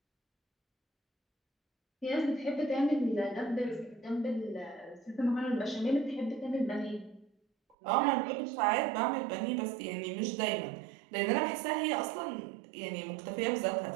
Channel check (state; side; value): drops out; left; at 7.8 s